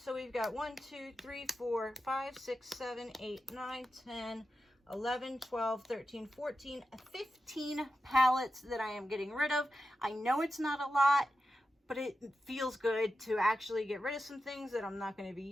we've got 1, 2, 3, 4, 5, 6, 7, 8, 9, 10, 11, 12, 13, 14, 15 palettes that I am getting rid of. I know it's not a lot, but it feels good to actually get rid of some things that I'm not going to be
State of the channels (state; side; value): normal; both; correlation 0.91